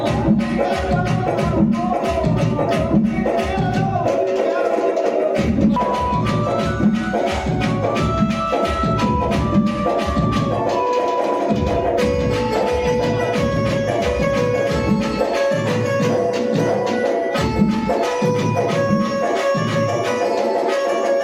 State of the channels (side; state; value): both; identical; correlation 1.00